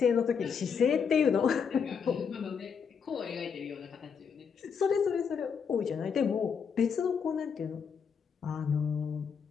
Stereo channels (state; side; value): quieter; right; 6.5 dB